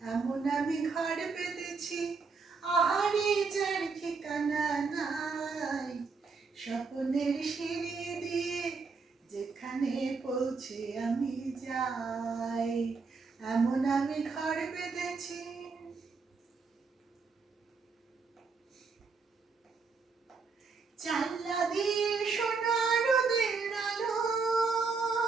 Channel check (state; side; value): quieter; left; 4.8 dB